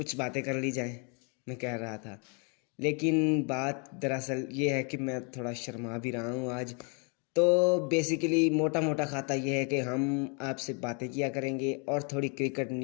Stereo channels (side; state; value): right; quieter; 35.6 dB